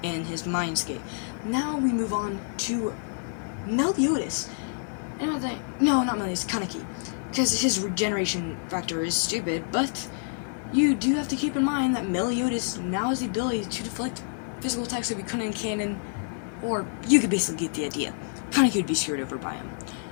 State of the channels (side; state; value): right; silent; 56 dB below the other